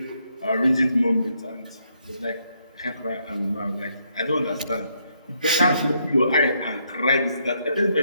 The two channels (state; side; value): inverted; both; correlation -0.75